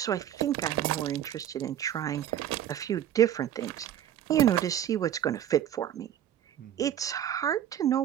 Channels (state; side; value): quieter; left; 10.7 dB